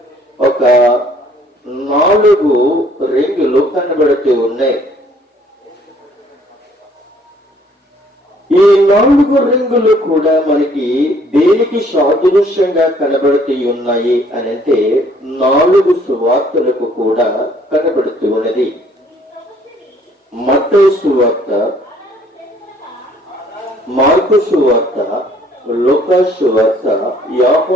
ఒక 4 రింగులు కనబడుతూ ఉన్నాయి. ఈ 4 రింగులు కూడా మనకి దేనికి సాదృశ్యంగా కనబడుతూ ఉన్నాయి అనంటే 4 సువార్తలకు కూడా కనబడుతూ ఉన్నది. మత్తయి సువార్త, మార్కు సువార్త, లూకా సువార్త,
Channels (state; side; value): normal; both; correlation 0.60